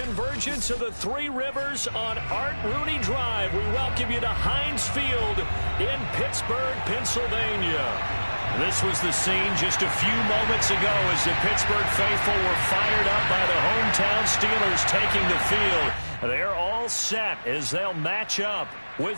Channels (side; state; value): both; inverted; correlation -1.00